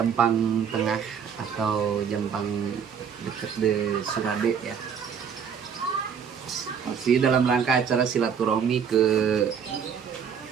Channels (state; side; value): quieter; left; 7.3 dB